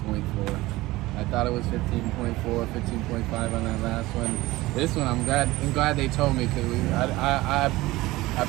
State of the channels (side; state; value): left; quieter; 19.0 dB